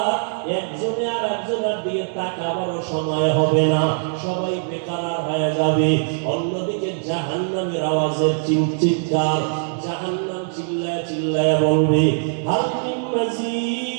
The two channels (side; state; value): left; silent; 62 dB below the other